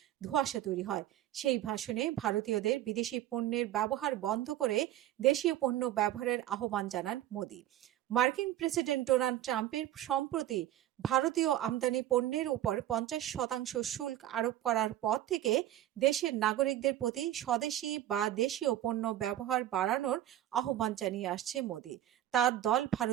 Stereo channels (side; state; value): left; quieter; 12.8 dB